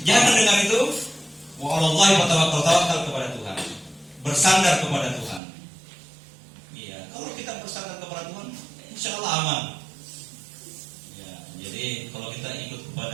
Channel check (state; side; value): drops out; left; at 5.4 s